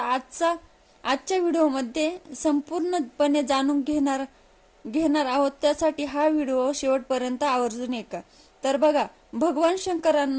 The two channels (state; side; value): identical; both; correlation 1.00